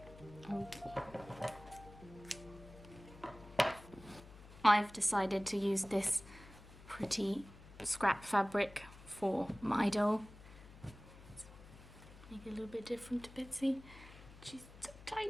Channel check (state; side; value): noise; left; hum, 18 dB below the sound